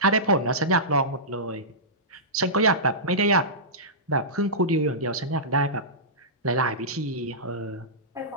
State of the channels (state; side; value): normal; both; correlation -0.17